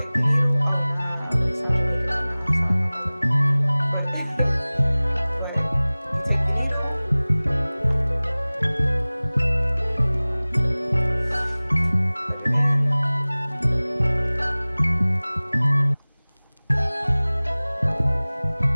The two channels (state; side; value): inverted; both; correlation -0.99